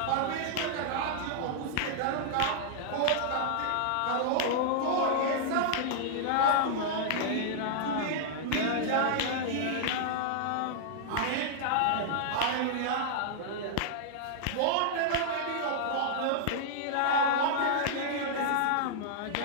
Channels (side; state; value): both; different; correlation -0.01